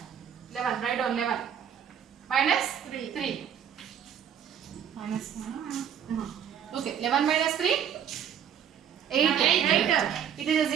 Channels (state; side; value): quieter; left; 8.7 dB